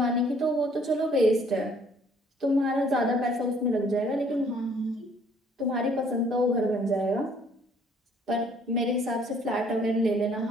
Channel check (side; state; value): both; normal; correlation 0.60